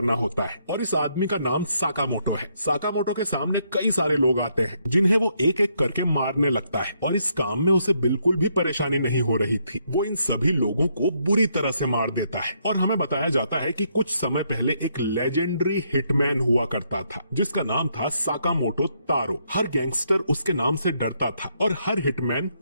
होता है, और इस आदमी का नाम साकामोटो है। साकामोटो के सामने कई सारे लोग आते हैं जिन्हें वो एक एक करके मारने लगता है, और इस काम में उसे बिल्कुल भी परेशानी नहीं हो रही थी। वो इन सभी लोगों को बुरी तरह से मार देता है, और हमें बताया जाता है कि कुछ समय पहले एक लेजेंडरी हिटमैन हुआ करता था जिसका नाम था साकामोटो तारो। हर गैंगस्टर उसके नाम से डरता था और हर हिटमैन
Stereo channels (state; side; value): inverted; both; correlation -0.74